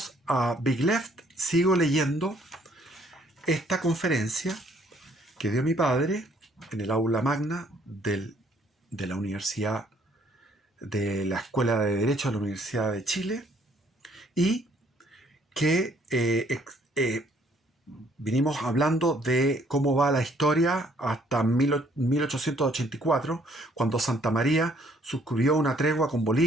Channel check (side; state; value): both; normal; correlation 0.64